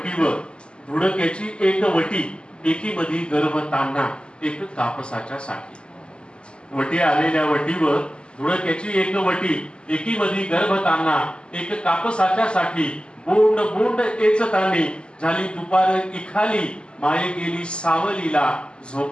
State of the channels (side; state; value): right; late; 0.051 ms